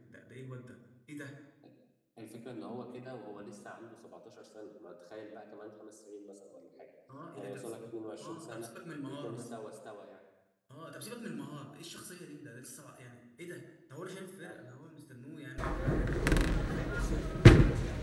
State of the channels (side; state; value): both; identical; correlation 1.00